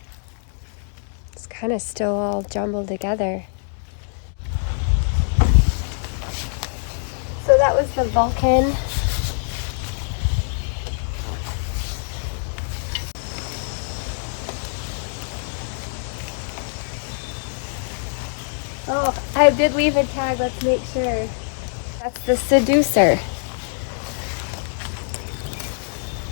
It's kind of still all jumbled together. So that was the Vulcan. Oh, I did leave a tag, let's make sure. That's the Seducer.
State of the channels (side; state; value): right; silent; digital silence